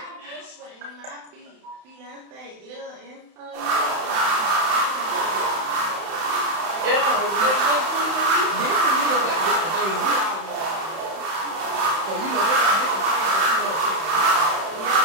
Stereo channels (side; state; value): left; late; 31 ms